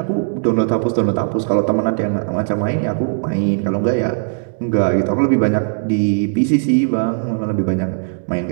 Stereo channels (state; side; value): silent; left; digital silence